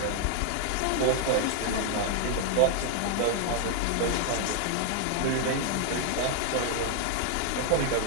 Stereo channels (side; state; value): both; different; correlation 0.00